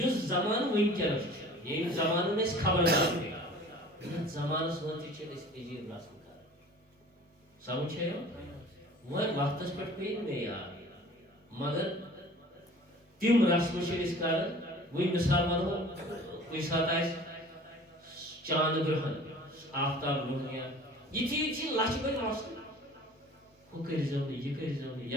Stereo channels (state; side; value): normal; both; correlation 0.45